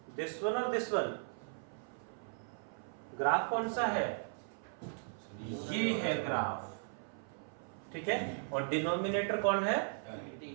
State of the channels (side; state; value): left; silent; 53 dB below the other